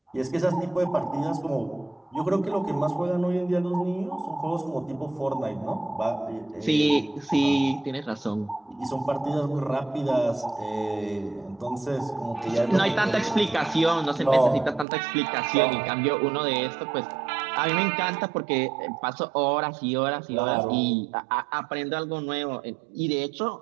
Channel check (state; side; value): drops out; left; at 14.9 s